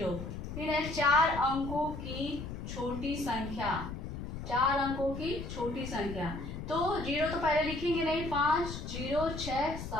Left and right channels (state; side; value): noise; left; rumble, 7 dB below the sound